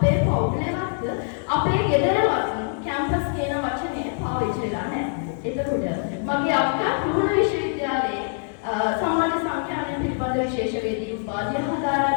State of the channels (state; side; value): silent; right; 63 dB below the other